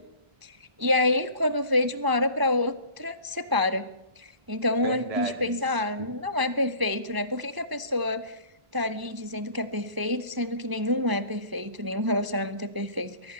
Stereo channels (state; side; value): late; left; 1.0 ms